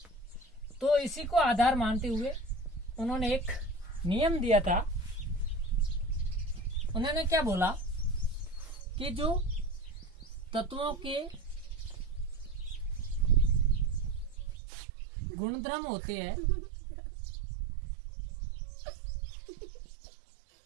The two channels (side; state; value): left; drops out; at 14.6 s